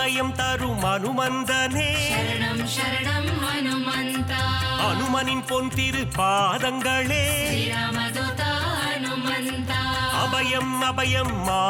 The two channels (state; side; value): identical; both; correlation 1.00